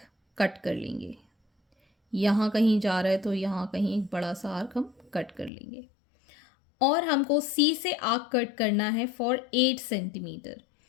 कट कर लेंगे. यहाँ कहीं जा रहा है तो यहाँ कहीं एक बड़ा सा आर्क हम कट कर लेंगे. और हमको C से आर्क कट करना है फॉर 8 सेंटीमीटर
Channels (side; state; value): right; drops out; at 5.5 s